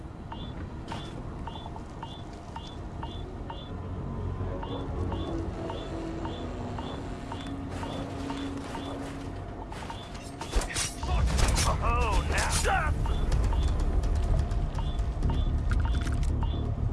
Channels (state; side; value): identical; both; correlation 1.00